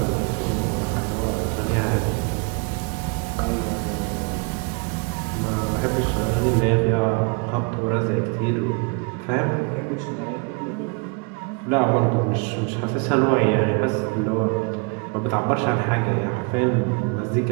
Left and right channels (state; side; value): quieter; left; 32.9 dB